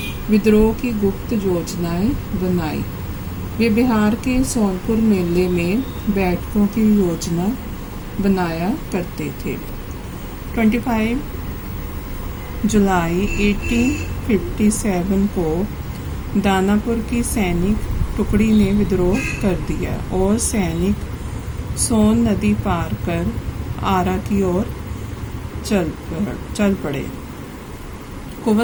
विद्रोह की गुप्त योजनाएं बनाई। वे बिहार के सोनपुर मेले में बैठकों की योजना बनाया करते थे। 25 जुलाई 1857 को दानापुर की सैनिक टुकड़ी ने विद्रोह कर दिया और सैनिक सोन नदी पार कर आरा की ओर चल पड़े।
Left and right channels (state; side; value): identical; both; correlation 1.00